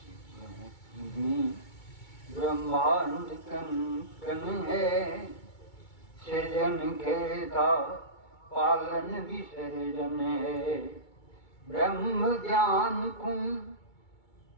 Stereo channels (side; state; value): right; late; 2.2 ms